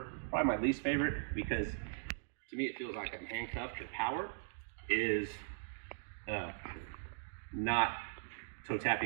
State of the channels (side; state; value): left; silent; digital silence